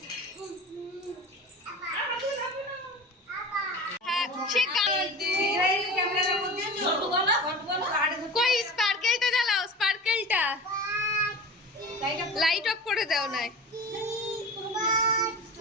কই স্পার্কেলটা জ্বালাও, স্পার্কেলটা লাইট অফ করে দাও না।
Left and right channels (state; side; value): normal; both; correlation 0.34